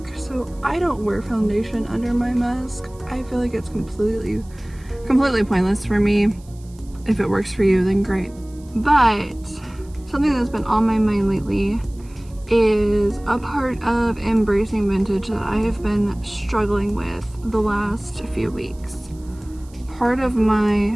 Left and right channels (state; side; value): noise; right; hiss, 27 dB below the sound